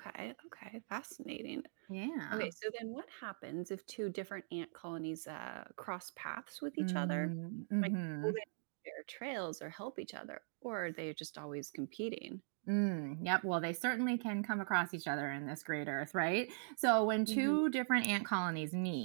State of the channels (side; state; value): left; silent; digital silence